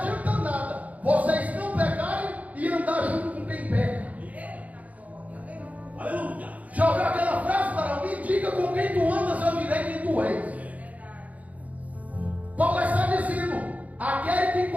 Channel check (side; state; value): left; late; 0.072 ms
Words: nada vocês não pecarem e andar junto com quem peca. Já ouviu aquela frase para mim? Diga com quem tu andas, eu direi quem tu és. Paulo está dizendo: aquele que